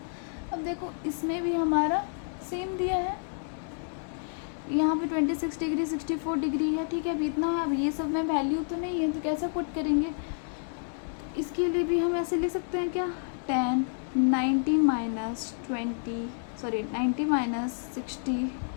अब देखो इसमें भी हमारा सेम दिया है, यहाँ पे 26 डिग्री 64 डिग्री है, ठीक है। अभी इतना है, अब ये सब में वैल्यू तो नहीं है तो कैसे पुट करेंगे। इसके लिए भी हम ऐसे ले सकते हैं क्या, tan 90 माइनस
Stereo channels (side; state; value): right; silent; digital silence